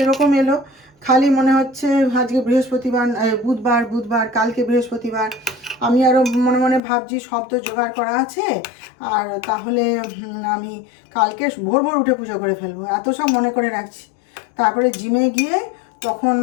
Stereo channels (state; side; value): drops out; right; at 6.8 s